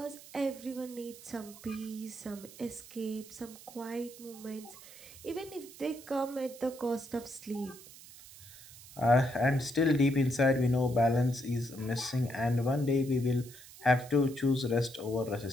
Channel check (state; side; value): noise; right; hiss, 18 dB below the sound